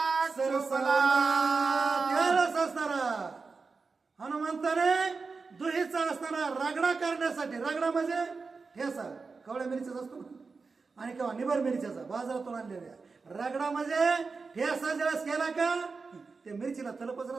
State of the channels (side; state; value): left; quieter; 4.5 dB